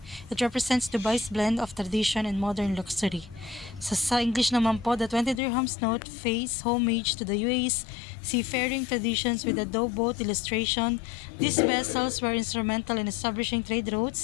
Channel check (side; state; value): right; drops out; at 5.4 s